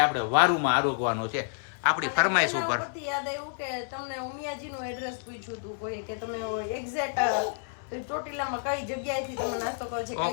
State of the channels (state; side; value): silent; right; 56 dB below the other